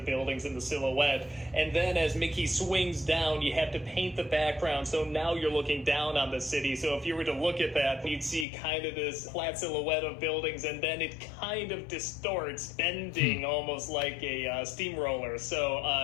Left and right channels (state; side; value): drops out; right; at 8.5 s